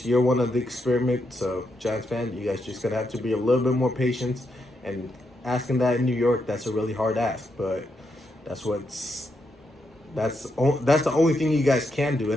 year one of the experiment. So Giants fan, you guys just gonna have to be a little bit more patient. And asking that in New York, that's a really hard ask. But that's what's that's the only thing you guys can do.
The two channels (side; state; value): both; normal; correlation 0.81